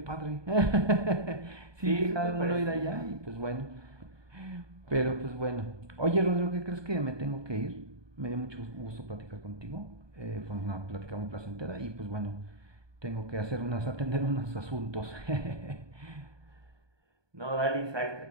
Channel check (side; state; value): left; late; 1.2 ms